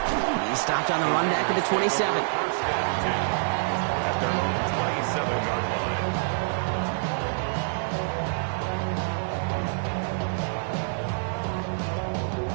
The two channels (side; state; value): left; silent; 60 dB below the other